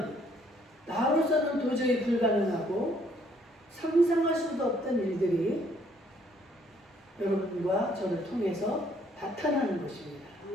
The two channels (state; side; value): normal; both; correlation 0.65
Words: 나로서는 도저히 불가능하고 상상할 수도 없던 일들이 여러분과 저를 통해서 나타나는 것입니다.